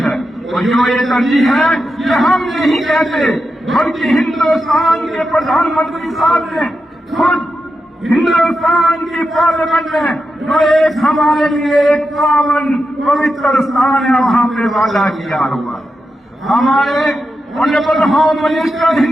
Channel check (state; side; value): normal; both; correlation 0.88